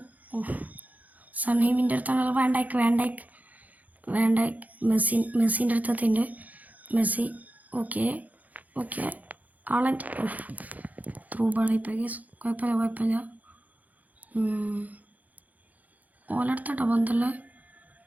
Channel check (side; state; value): left; late; 0.078 ms